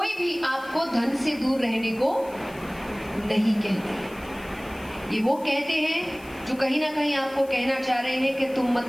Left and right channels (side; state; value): left; noise; hiss, 23 dB below the sound